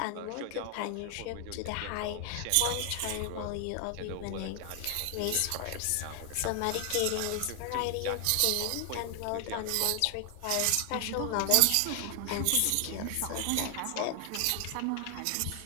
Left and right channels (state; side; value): different; both; correlation 0.00